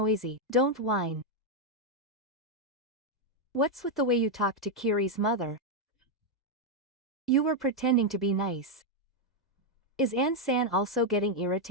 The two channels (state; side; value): normal; both; correlation 0.00